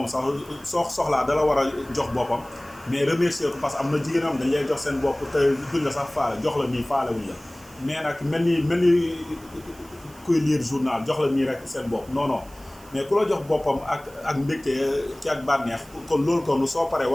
sax soo soxlaa dala war a jox boppam mais remercier ko parce que am na jigéenam dañ lay jox seen bopp te duñ la sax faale jox la nii faale wuñ la mais nag mel ni kuy lire journal jox la nii rek seen bopp non mais ku la jox boppam ak mbégte ci ak bànneex kon loolu kon soo paree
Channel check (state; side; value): noise; right; hiss, 24 dB below the sound